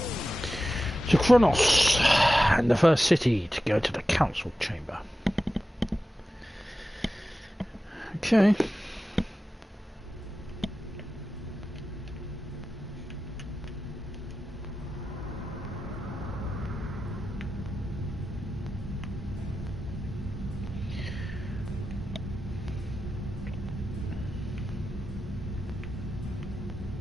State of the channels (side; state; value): both; normal; correlation 0.93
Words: To QO'NOS, and the first city to go to the council chamber. Okay.